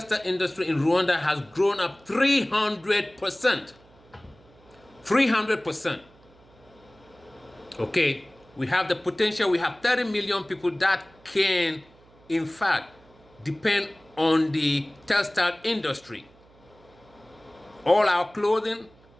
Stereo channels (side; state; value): right; noise; hum, 28 dB below the sound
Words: industry in Rwanda has grown up 300%. 300%. Okay, we have the potential. We have 30 million people that can, in fact, depend on the textile industry. All our clothing,